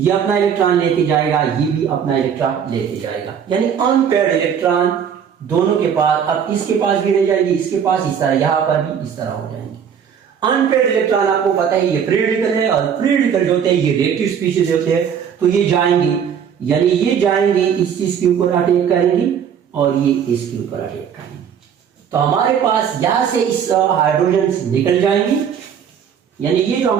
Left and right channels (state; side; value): quieter; left; 7.9 dB